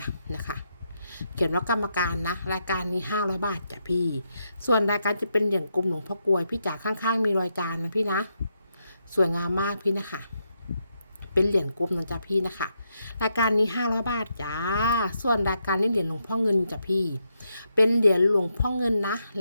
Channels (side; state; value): both; inverted; correlation -0.81